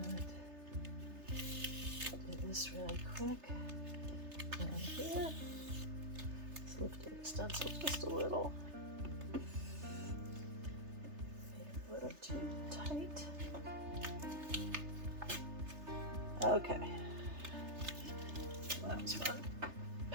do this really quick. And here, let's lift the stencil just a little. Maybe a little too tight. Okay. Well, that was fun.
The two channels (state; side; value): late; left; 3.3 ms